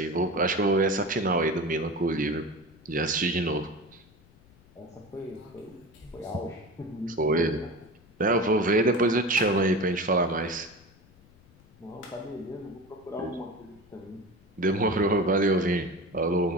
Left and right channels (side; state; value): left; noise; rumble, 28 dB below the sound